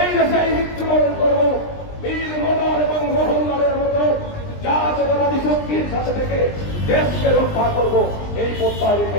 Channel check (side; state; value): right; late; 20 ms